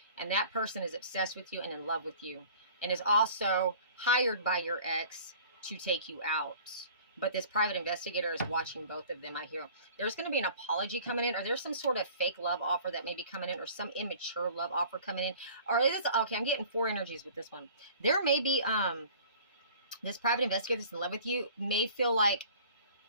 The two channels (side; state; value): both; inverted; correlation -0.47